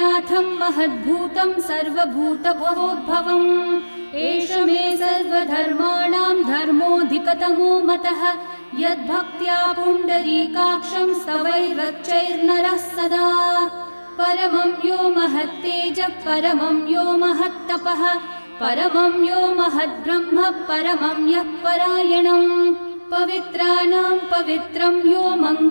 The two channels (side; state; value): both; inverted; correlation -1.00